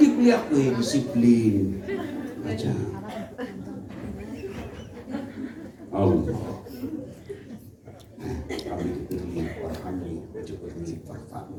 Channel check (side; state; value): both; identical; correlation 1.00